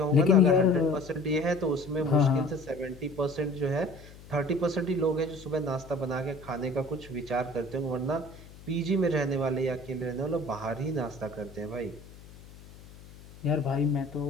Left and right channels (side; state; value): left; noise; hum, 19 dB below the sound